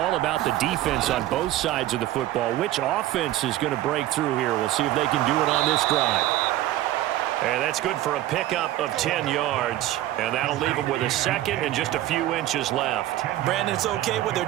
about the defense on both sides of the football. Which offense is going to break through here? We'll see if they can do it on this drive. And that's good for a pickup of 10 yards. And that'll leave them with a second and just a few inches left. Brandon, it's okay what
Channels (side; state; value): left; quieter; 14.6 dB